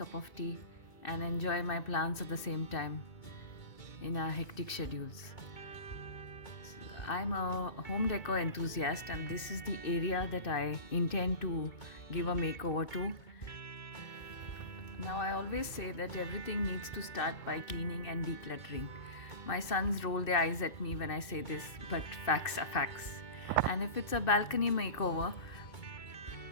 of tea and enjoy my plants at the same time in our hectic schedules. I'm a home decor enthusiast, and this is the area that I intend to give a makeover to. Now, I always say that everything needs to start by cleaning and decluttering. My sons roll their eyes at me when I say this, but facts are facts. And if it's a balcony makeover,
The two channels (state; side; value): late; right; 2.6 ms